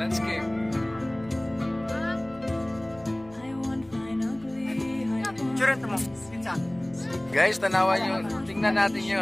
Guys, tanawan nyo. Tingnan natin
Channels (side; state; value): left; noise; hum, 25 dB below the sound